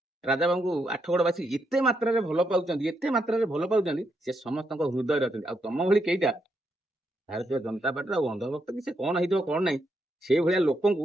राजा बाबू आठगड़वासी एत मात्रा भल पाँच एत मात्रा भल पाँच से समस्त हृदय अच्छा तुम भाई कईटा भारतीय जनता पार्टी अंधभक्त कि कौन हो कौन ना से भाया लोक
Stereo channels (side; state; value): both; normal; correlation 0.80